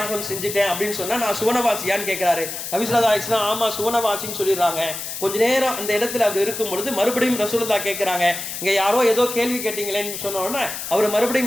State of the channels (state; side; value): noise; left; hiss, 7 dB below the sound